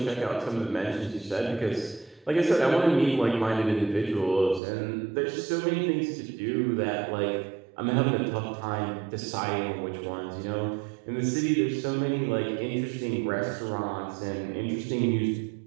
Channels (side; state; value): left; drops out; at 4.6 s